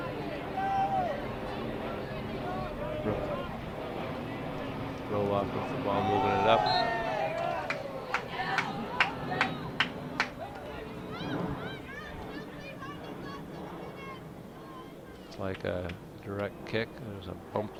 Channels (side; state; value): both; identical; correlation 1.00